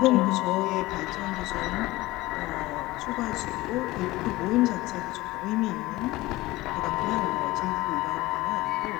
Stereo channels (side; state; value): right; quieter; 19.0 dB